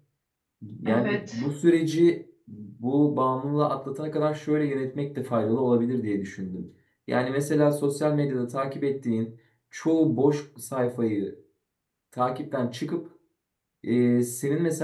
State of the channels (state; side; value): identical; both; correlation 1.00